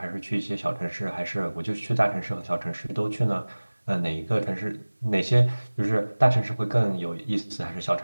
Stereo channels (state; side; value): inverted; both; correlation -1.00